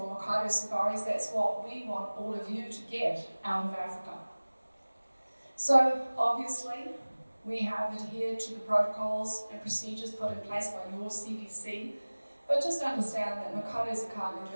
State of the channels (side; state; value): both; inverted; correlation -1.00